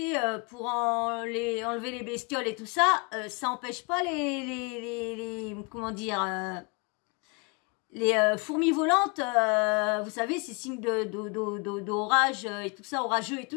pour enlever les bestioles et tout ça, ça empêche pas comment dire... les fourmis volantes, vous savez, c'est signe d'orage et tout ça, orageux et tout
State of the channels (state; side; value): quieter; right; 32.1 dB